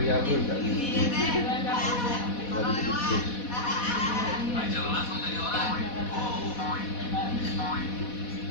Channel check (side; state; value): right; late; 4.1 ms